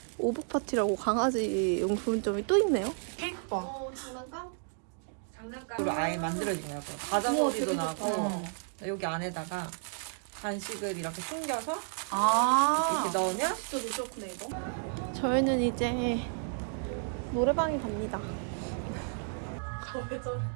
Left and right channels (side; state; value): left; silent; 56 dB below the other